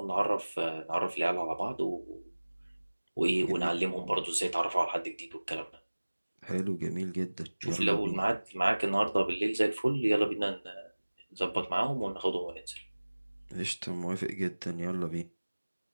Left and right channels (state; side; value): inverted; both; correlation -1.00